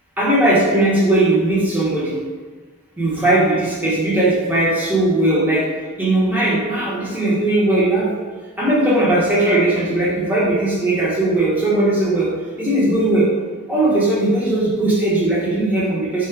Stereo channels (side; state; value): both; normal; correlation 0.34